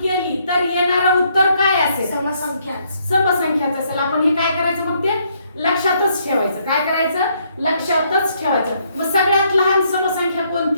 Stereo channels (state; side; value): inverted; both; correlation -0.71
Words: तर येणारं उत्तर काय असेल, समसंख्याच असेल. आपण हे काय करायचं, मग ते लक्षातच ठेवायचं. काय करायचं, लक्षातच ठेवायचं. मग सगळ्यात लहान समसंख्या